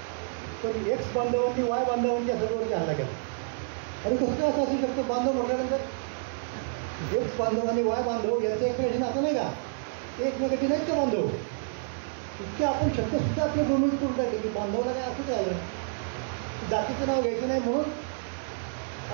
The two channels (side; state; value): left; silent; digital silence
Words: पण एक्स बांधवांनी वाय बांधवांच्या सर्ववरती हल्ला केला. आणि कसं काय असं असू शकतं? बांधव म्हटल्यानंतर एक्स बांधव आणि वाय बांधव यांचं एकमेकांशी नातं नाही का? ते एकमेकांचे नाहीत का बांधव? इतके आपण शब्दसुद्धा आपले भूमित करून टाकले की बांधवाला काय असंच आहे, जातीचं नाव घ्यायचं नाही म्हणून